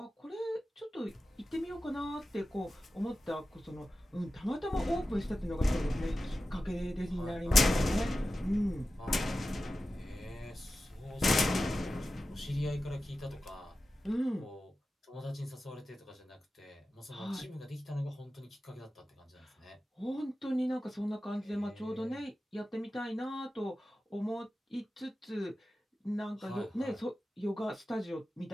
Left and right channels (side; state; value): both; normal; correlation 0.94